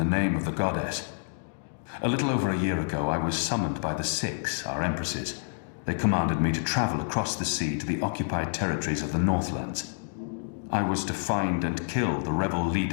name of the goddess. A little over a year ago, I was summoned by the Six, our empresses. They commanded me to travel across the sea to the occupied territories of the Northlands. I was to find and kill the rebel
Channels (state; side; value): silent; right; digital silence